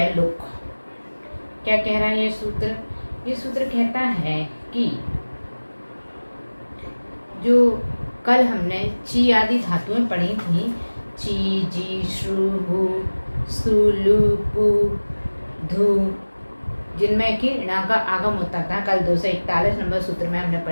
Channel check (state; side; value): inverted; both; correlation -1.00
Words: लुक। क्या कह रहा है ये सूत्र? ये सूत्र कहता है कि जो कल हमने ची आदि धातुएं पढ़ी थी, ची, जी, श्रु, हु, सु, लु, पु, धु, जिनमें कि णा का आगम होता था, कल 241 नंबर सूत्र में हमने